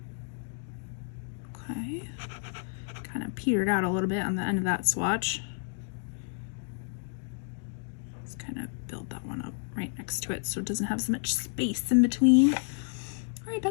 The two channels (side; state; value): right; silent; digital silence